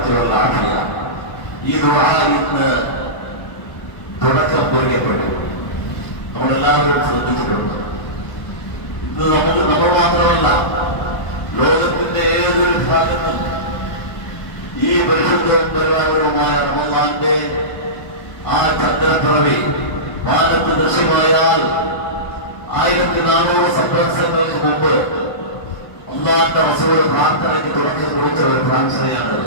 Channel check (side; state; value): right; late; 1.1 ms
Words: والعافية. ഈ ദുആ ഇന്ന് തുടക്കം കുറിക്കപ്പെട്ടു. നമ്മളെല്ലാവരും ശ്രദ്ധിച്ചിട്ടുണ്ട്. ഇത് നമ്മൾ മാത്രമല്ല, ലോകത്തിന്റെ ഏതൊരു ഭാഗത്തും ഈ പരിശുദ്ധവും പരിപാലനവുമായ റമളാന്റെ ആ ചന്ദ്രപ്പിറവി വാനത്ത് ദൃശ്യമായാൽ 1400 സംവത്സരങ്ങൾക്ക് മുമ്പ് അല്ലാഹുവിന്റെ റസൂൽ പ്രാർത്ഥനയ്ക്ക് തുടക്കം കുറിച്ച ഒരു പ്രാർത്ഥനയാണ്.